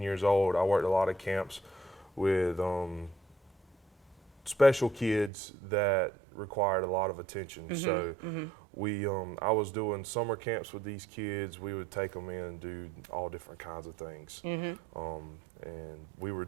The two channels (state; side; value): drops out; left; at 5.3 s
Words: years old. I worked a lot of camps with special kids that required a lot of attention. So I was doing summer camps with these kids. We would take them in and do all different kinds of things. And we were